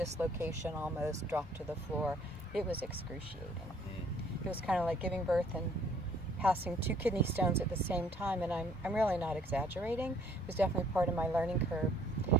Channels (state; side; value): normal; both; correlation 0.61